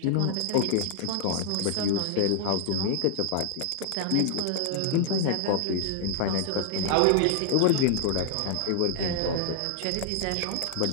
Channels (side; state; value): both; different; correlation 0.00